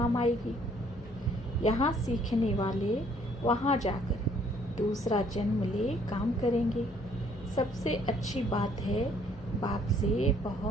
आएगी। यहाँ सीखने वाले वहाँ जाकर दूसरा जन्म ले काम करेंगे। सबसे अच्छी बात है बाप से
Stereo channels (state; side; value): normal; both; correlation 0.63